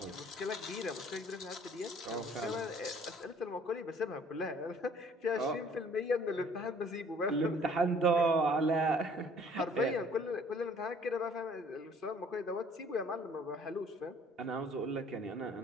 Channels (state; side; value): normal; both; correlation 0.56